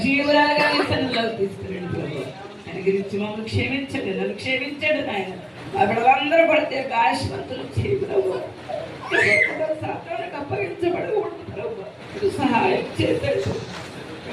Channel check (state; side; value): identical; both; correlation 1.00